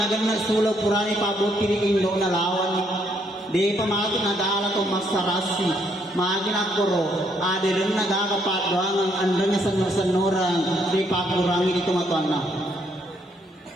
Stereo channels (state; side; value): normal; both; correlation 0.71